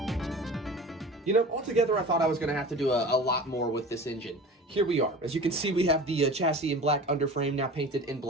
You know, altogether I thought I was going to have to do a lot more with this engine. Here we are. As you can see, we have the chassis in black underframe now painted in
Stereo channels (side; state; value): both; normal; correlation 0.37